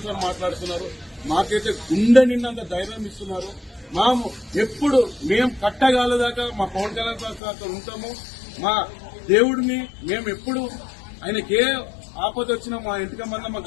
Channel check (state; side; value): drops out; right; at 7.4 s